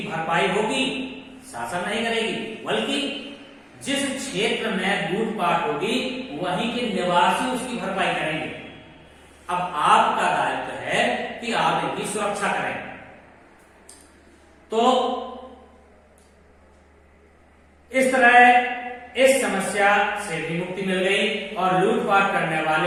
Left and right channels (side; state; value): both; identical; correlation 1.00